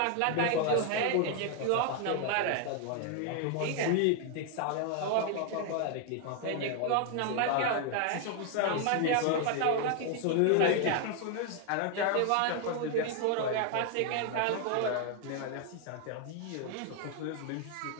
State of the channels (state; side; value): different; both; correlation 0.01